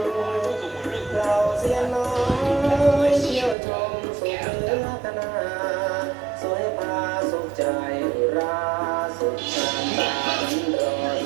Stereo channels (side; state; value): left; drops out; at 3.6 s